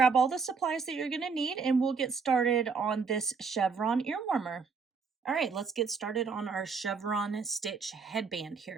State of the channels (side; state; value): left; quieter; 5.3 dB